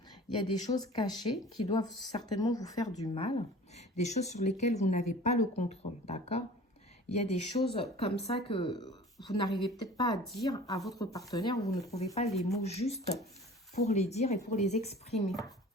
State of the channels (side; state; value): both; normal; correlation 0.43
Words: choses cachées qui doivent certainement vous faire du mal, des choses sur lesquelles vous n'avez pas le contrôle, d'accord? Il y a des choses comme ça que vous n'arrivez peut-être pas à dire à votre partenaire, vous ne trouvez pas les mots justes pour les dire et pour les exprimer.